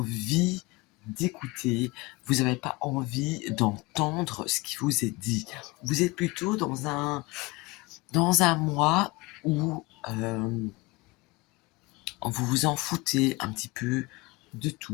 d'écouter, vous n'avez pas envie d'entendre ce qui vous est dit. Vous êtes plutôt dans un mois où vous vous en foutez un petit peu de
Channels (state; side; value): quieter; right; 23.6 dB